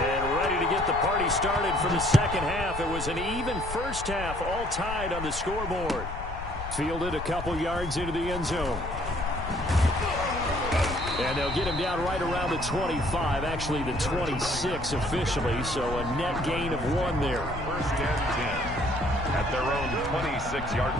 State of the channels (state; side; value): noise; left; rumble, 9 dB below the sound